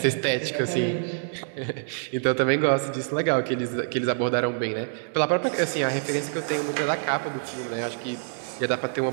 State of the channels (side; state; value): left; silent; 61 dB below the other